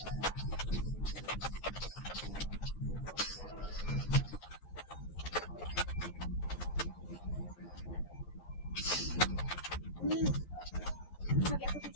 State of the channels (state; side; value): late; right; 11 ms